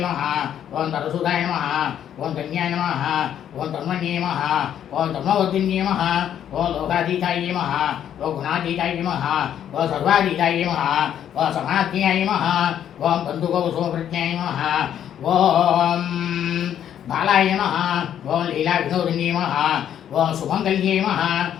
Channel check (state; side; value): quieter; right; 10.0 dB